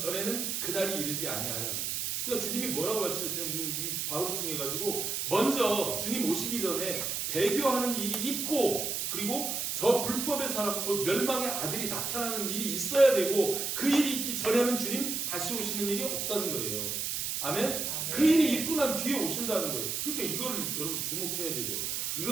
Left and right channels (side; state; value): right; noise; hiss, 1 dB below the sound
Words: 그날이 이르지 아니하리라. 그러니까 주님이 뭐라고 말씀하시냐면 지금 이 바울을 통해 가지고 먼저 주님 오시기 전에 배교하는 일이 있고 그리고 저 불법의 사람 곧 멸망의 아들이 나타나는 일이 있어야 되고 그 일이 있기 전에는 주님 다시 오시는 일이 없다는 거예요. 아멘? 그 일이 있고 난 뒤에 오신다는 거예요. 그러니까 이거를 여러분 주목해야 되죠.